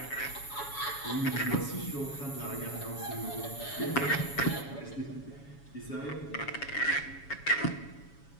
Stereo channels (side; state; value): right; late; 7.1 ms